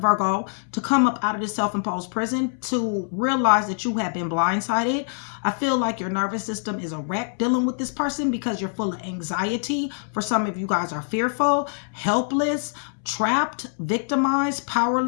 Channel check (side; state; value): right; silent; 62 dB below the other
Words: Virgo, to come up out of this self-imposed prison, to realize that you have been blindsided. I feel like your nervous system is a wreck dealing with this person because you're full of anxiety. For some of you guys are fearful, helpless, trapped, victimized,